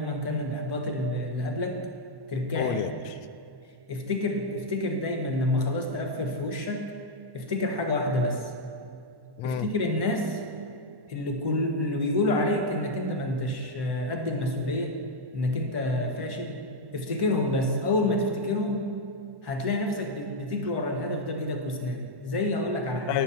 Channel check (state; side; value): late; left; 1.1 ms